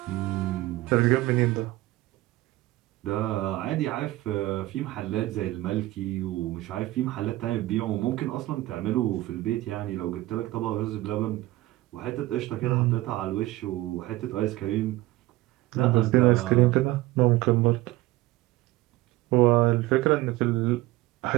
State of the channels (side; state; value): left; quieter; 17.8 dB